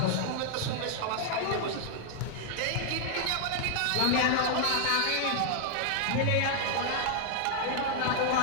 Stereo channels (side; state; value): both; different; correlation 0.00